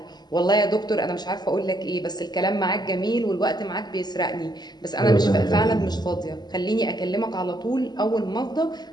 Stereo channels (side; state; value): right; late; 0.20 ms